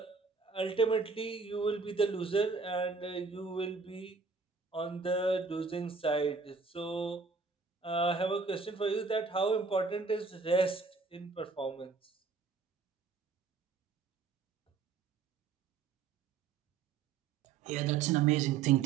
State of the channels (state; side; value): quieter; left; 4.8 dB